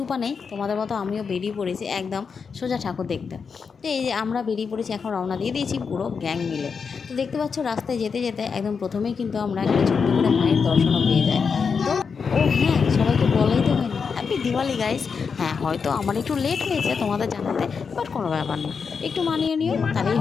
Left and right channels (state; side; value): quieter; right; 5.7 dB